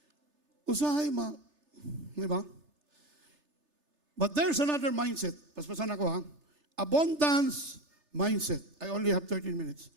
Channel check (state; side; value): late; left; 3.3 ms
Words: Usahay, di ba? But there's another mindset. Paspasan ako, ha? Abundance mindset. I only have 13 minutes.